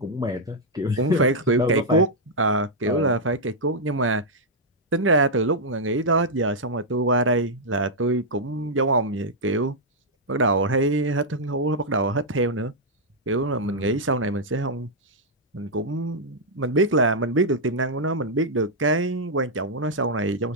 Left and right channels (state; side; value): normal; both; correlation -0.05